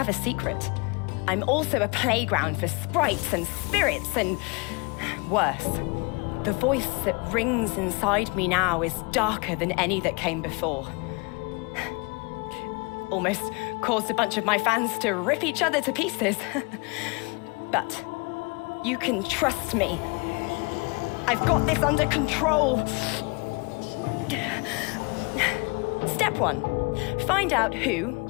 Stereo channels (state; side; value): quieter; right; 29.7 dB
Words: a secret. I'm also a playground for sprites and spirits and worse. The voice that rings inside me now is darker than any that came before. Almost caused a bunch of my fans to rip each other to pieces. But you can trust me. I've got this under control. Step 1, find out who